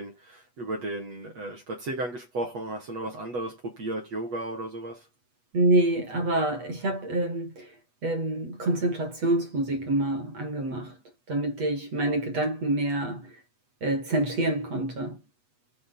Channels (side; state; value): left; late; 8.2 ms